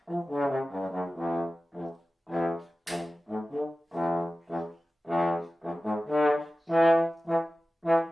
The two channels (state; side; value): normal; both; correlation 0.95